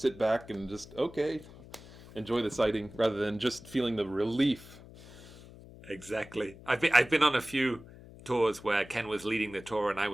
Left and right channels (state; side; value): noise; left; hum, 19 dB below the sound